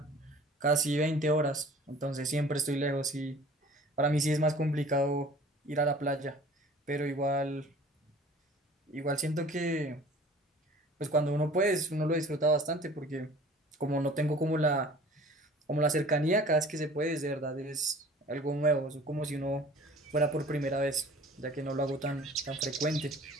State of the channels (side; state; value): both; normal; correlation 0.47